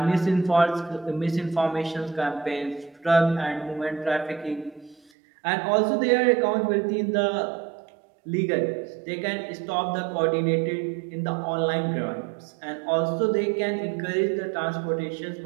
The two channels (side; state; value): left; drops out; at 5.1 s